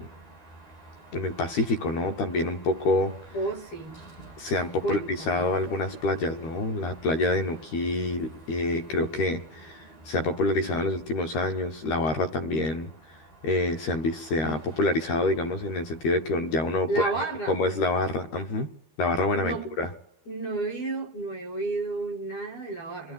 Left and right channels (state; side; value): late; right; 13 ms